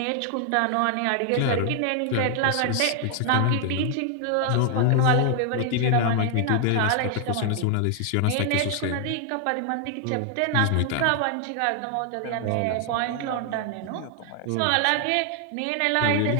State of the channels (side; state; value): both; different; correlation 0.00